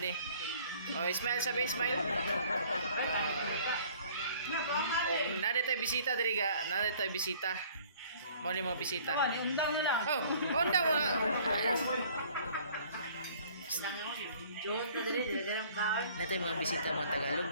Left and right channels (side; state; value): both; inverted; correlation -0.54